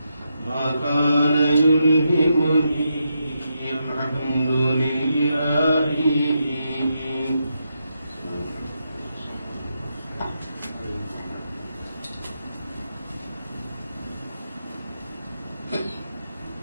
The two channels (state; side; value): inverted; both; correlation -0.83